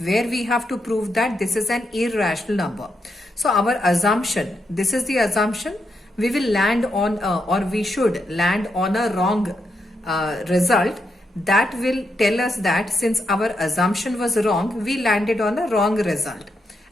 we have to prove that this is an irrational number. So our assumption, this is the assumption, we will land on we should land on a wrong result. That will tell us that since our assumption was wrong, we landed on a wrong result,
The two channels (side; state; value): both; normal; correlation 0.82